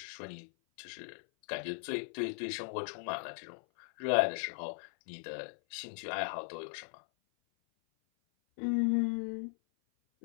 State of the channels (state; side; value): silent; right; 53 dB below the other